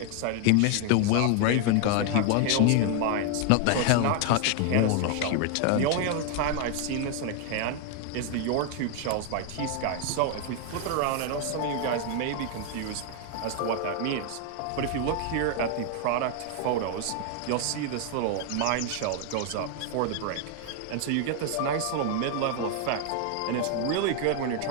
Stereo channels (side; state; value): both; different; correlation 0.00